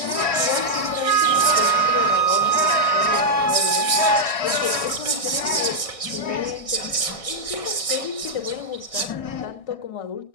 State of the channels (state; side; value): late; right; 1.6 ms